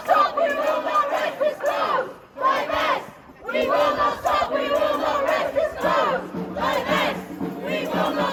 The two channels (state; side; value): identical; both; correlation 1.00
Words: stop, we will not rest this close! Divest! We will not stop, we will not rest this close! Divest! We will